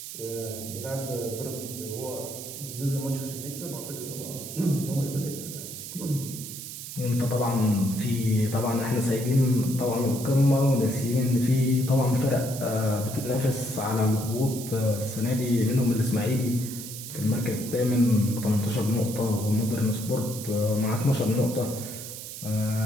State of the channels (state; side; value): noise; right; hiss, 10 dB below the sound